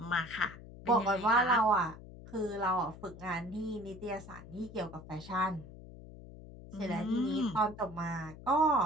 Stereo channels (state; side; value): noise; left; hum, 16 dB below the sound